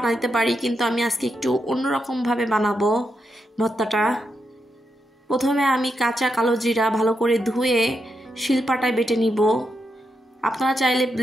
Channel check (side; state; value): both; normal; correlation 0.84